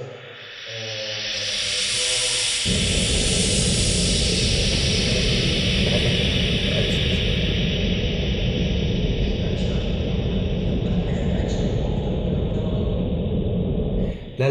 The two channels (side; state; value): both; identical; correlation 1.00